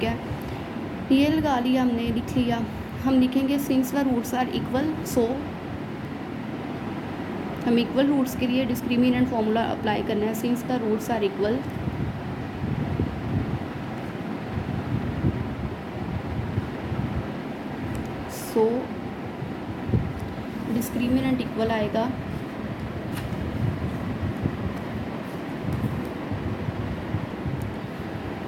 है, ये लगा लिया हमने, लिख लिया। हम लिखेंगे since the roots are equal, so हम इक्वल रूट्स के लिए डिस्क्रिमिनेंट फॉर्मूला अप्लाई करना है। Since the roots are equal, so discriminant equal आएगा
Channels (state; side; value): identical; both; correlation 1.00